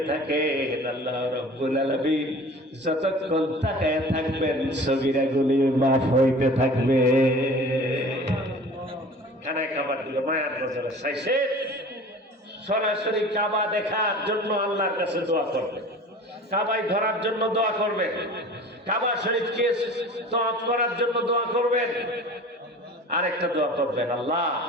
থাকেন, আল্লাহ রাব্বুল আলামিন যতক্ষণ তাকায় থাকবেন সগীরাগুলি মাফ হইতে থাকবে। খানায় কাবার দিকে মায়ার নজরে চাইছে, সরাসরি কাবা দেখার জন্য আল্লাহর কাছে দোয়া করবেন, কাবায় ধরার জন্য দোয়া করবেন, কাবা শরীফকে তওয়াফ করার জন্য দোয়া করবেন। আরেকটা দোয়া করবেন, আল্লাহ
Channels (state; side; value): normal; both; correlation 0.42